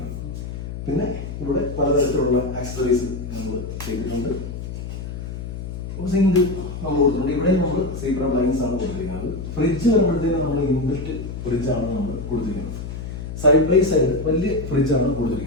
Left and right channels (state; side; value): noise; left; hum, 7 dB below the sound